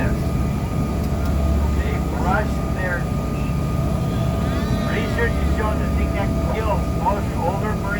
They brush their teeth. Research has shown the thing that kills most older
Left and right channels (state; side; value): identical; both; correlation 1.00